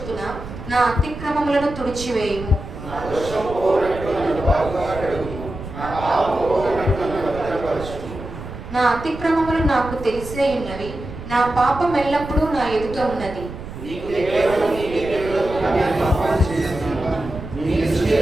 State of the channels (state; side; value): noise; right; rumble, 11 dB below the sound